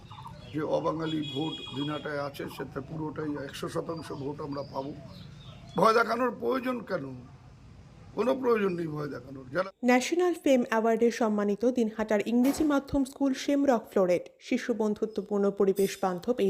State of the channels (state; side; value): identical; both; correlation 1.00